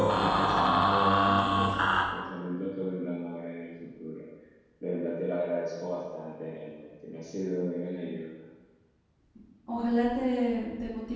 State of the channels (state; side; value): identical; both; correlation 1.00